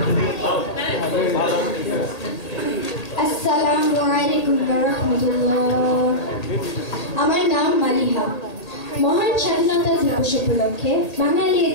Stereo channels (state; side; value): late; right; 1.8 ms